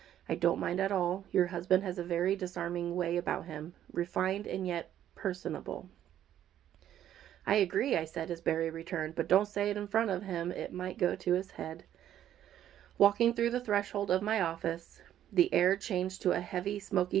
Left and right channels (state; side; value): quieter; left; 11.1 dB